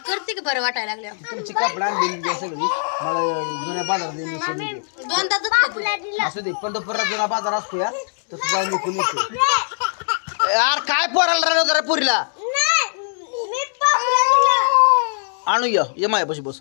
करते की बरं वाटायला लागल्या. तुमची कपडा आणलेली सगळी मला जुन्या बाजारात दोनदा दुखत. असू दे. पंढरपुरात जुना बाजार असतो या, तर तू जाऊन विकून येतो. यार काय पोराला राहिलं जरा पुरीला आणू. ये माय बस बस.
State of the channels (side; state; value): right; silent; digital silence